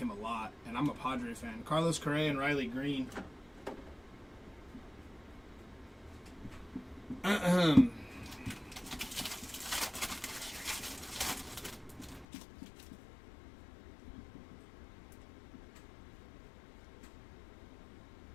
a lot, and I'm a Padre fan. Carlos Correa and Riley Green.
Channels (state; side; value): drops out; right; at 12.2 s